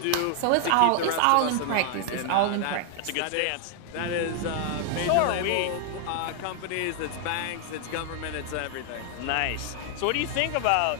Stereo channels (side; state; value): both; different; correlation 0.00